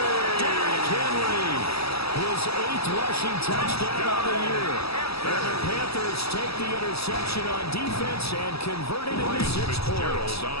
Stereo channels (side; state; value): right; late; 0.77 ms